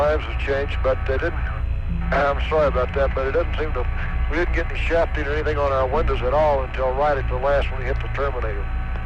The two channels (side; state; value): both; identical; correlation 1.00